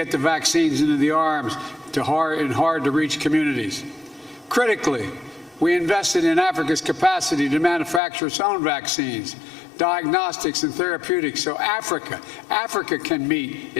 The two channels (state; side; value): drops out; right; at 8.0 s